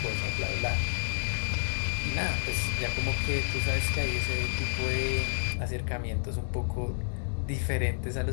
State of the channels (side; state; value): right; silent; digital silence